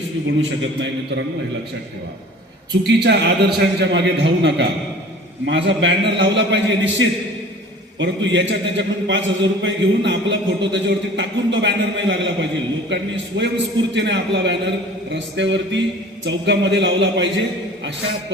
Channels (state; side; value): normal; both; correlation 0.45